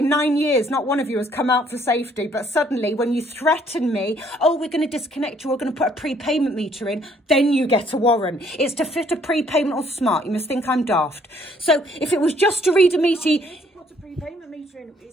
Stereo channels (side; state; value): both; normal; correlation 0.64